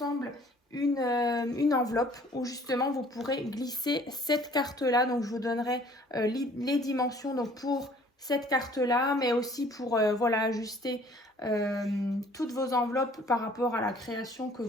une enveloppe où justement vous pourrez glisser cette carte-là. Donc je vous donnerai les dimensions donc, pour cette carte-là, mais aussi pour voilà, ajuster toutes vos enveloppes par rapport à la création que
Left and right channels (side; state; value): both; normal; correlation 0.55